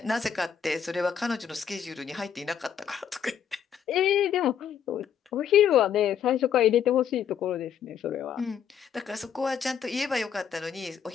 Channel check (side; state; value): right; quieter; 8.1 dB